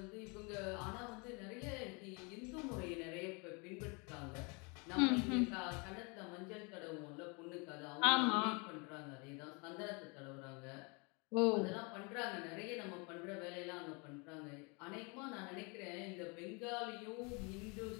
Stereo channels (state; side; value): quieter; right; 31.2 dB